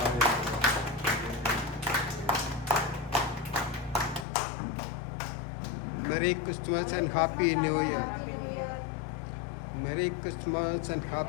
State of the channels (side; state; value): right; drops out; at 4.2 s